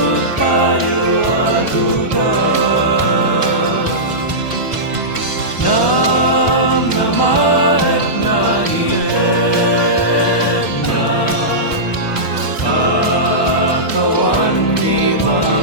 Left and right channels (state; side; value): late; right; 1.1 ms